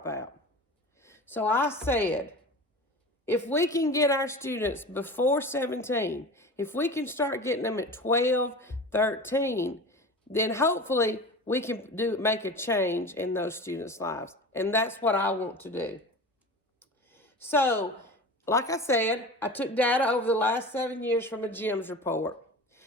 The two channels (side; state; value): both; normal; correlation 0.33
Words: out. So I said, if we can get our students before 17, if we can start getting them at 12, 13, then hopefully we can make a change in those students' lives. And that's what I want to do. So, like I said, I took data over the last 7 years from a GEMS report.